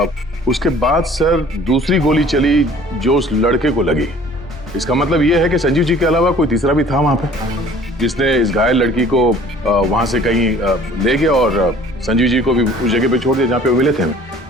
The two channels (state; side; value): normal; both; correlation 0.51